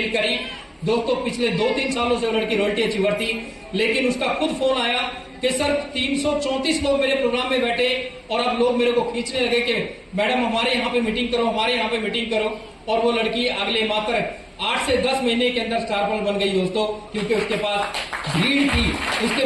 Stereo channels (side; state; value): both; identical; correlation 1.00